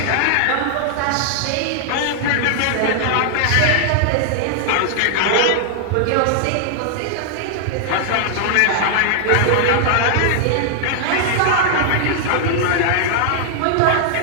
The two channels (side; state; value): both; different; correlation -0.01